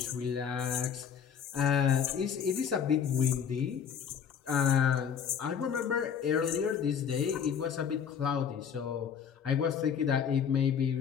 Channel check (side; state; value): right; quieter; 7.7 dB